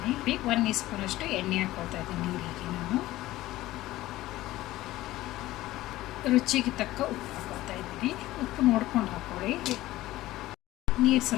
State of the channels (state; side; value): quieter; right; 16.5 dB